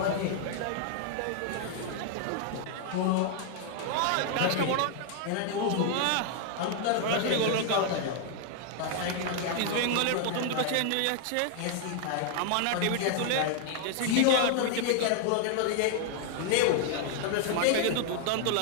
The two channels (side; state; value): both; different; correlation 0.00